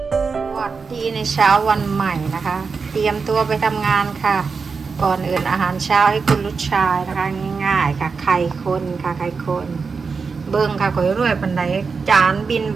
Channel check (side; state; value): left; quieter; 5.0 dB